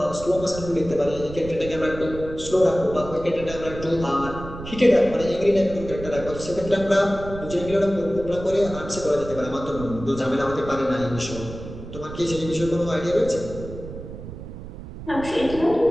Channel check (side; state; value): right; noise; rumble, 11 dB below the sound